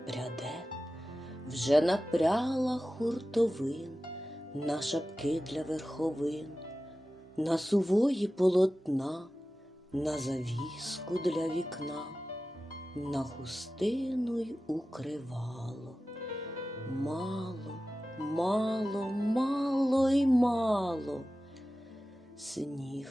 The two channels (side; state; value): both; normal; correlation 0.95